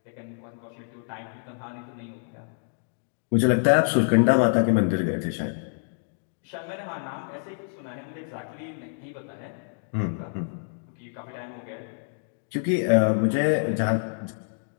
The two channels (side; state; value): right; silent; digital silence